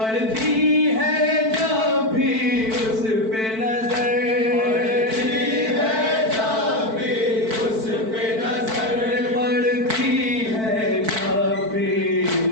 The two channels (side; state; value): left; late; 4.5 ms